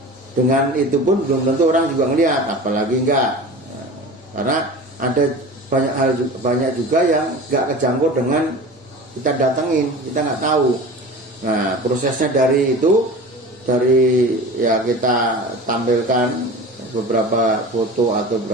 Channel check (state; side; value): normal; both; correlation 0.35